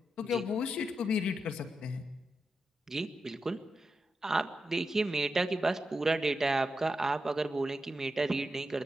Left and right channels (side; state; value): both; normal; correlation 0.88